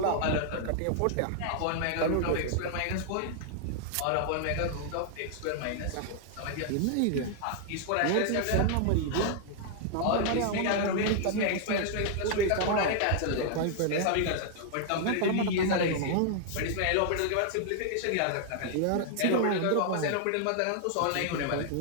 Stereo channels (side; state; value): both; different; correlation 0.00